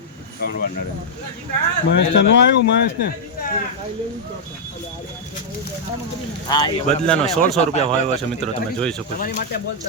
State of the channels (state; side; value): normal; both; correlation -0.06